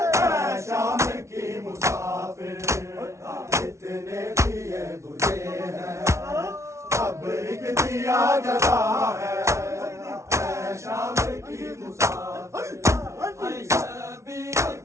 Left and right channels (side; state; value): left; late; 0.14 ms